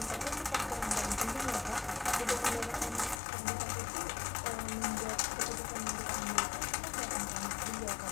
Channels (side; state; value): right; drops out; at 3.2 s